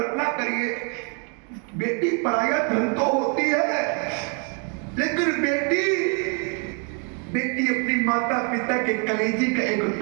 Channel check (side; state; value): left; quieter; 38.1 dB